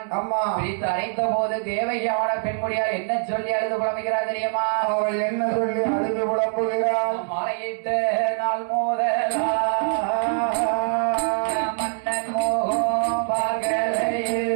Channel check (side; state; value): left; silent; 63 dB below the other